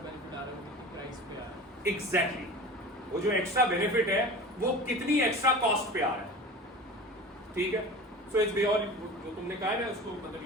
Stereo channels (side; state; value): both; normal; correlation 0.36